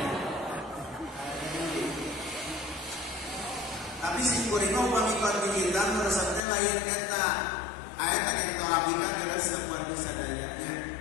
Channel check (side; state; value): right; drops out; at 6.4 s